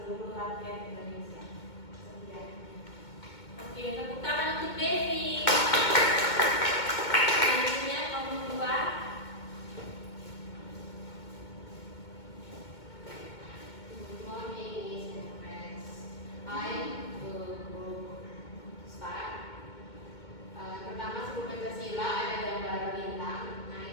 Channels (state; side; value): late; right; 2.2 ms